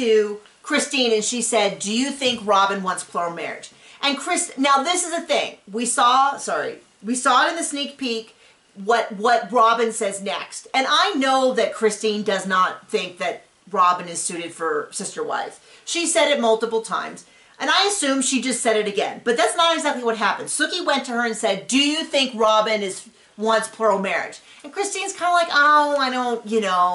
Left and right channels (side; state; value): both; identical; correlation 1.00